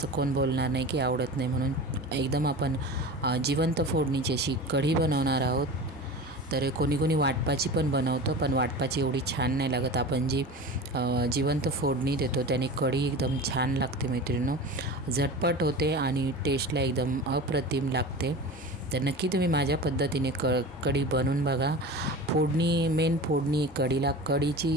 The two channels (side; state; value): both; normal; correlation 0.33